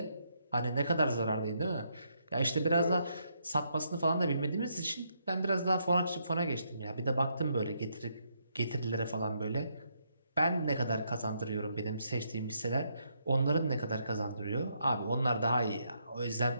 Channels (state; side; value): inverted; both; correlation -0.76